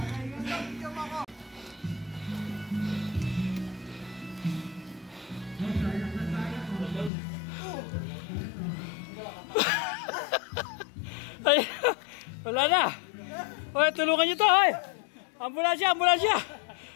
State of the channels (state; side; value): drops out; right; at 7.1 s